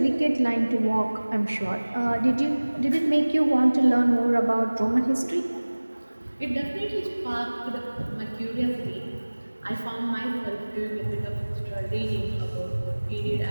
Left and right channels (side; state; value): both; inverted; correlation -1.00